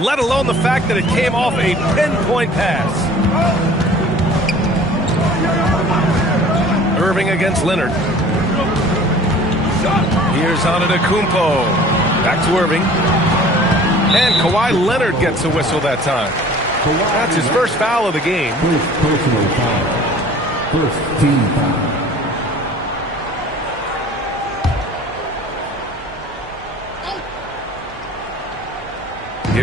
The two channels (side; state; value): both; normal; correlation 0.47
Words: let alone the fact that it came off a pinpoint pass. Irving against Leonard. Here's Antetokounmpo. Back to Irving. And Kawhi Leonard gets a whistle that time. That's his first foul of the game. First personal foul. First team foul.